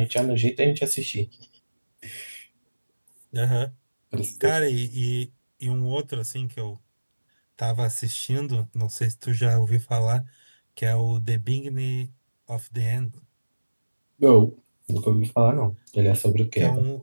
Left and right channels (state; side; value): inverted; both; correlation -1.00